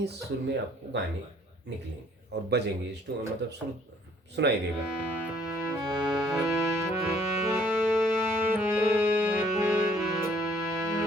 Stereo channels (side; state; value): both; normal; correlation 0.60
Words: सुर में आपको गाने निकलेंगे और बजेंगे, मतलब सुर सुनाई देगा।